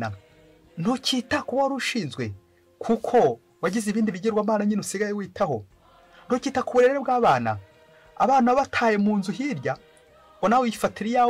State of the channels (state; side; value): identical; both; correlation 1.00